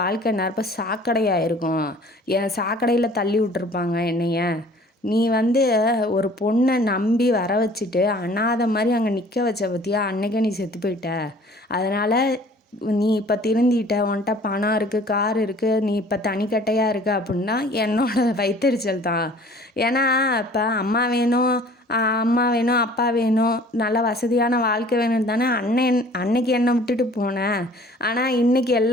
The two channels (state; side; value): normal; both; correlation 0.51